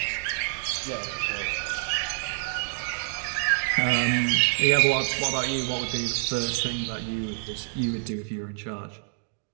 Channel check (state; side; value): silent; left; digital silence